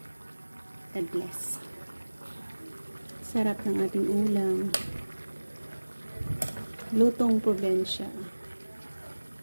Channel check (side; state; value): both; inverted; correlation -1.00